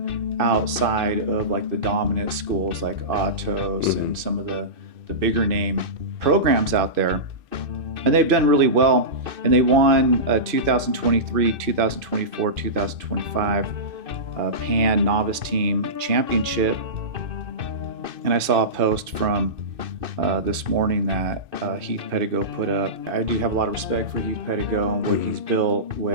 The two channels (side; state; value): left; late; 2.6 ms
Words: outside of like the dominant schools like Atos and some of the bigger name programs out there. And they've done really well, and they won 2023, 2024, 2025 Pan Novice Team Championship. And I saw a post from this morning that Heath Pedigo put up. I do have a lot of respect for Heath Pedigo and what he's built